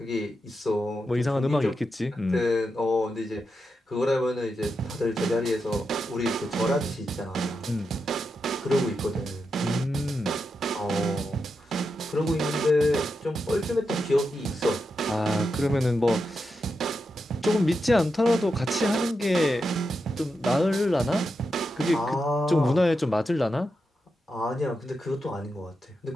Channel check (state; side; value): normal; both; correlation 0.87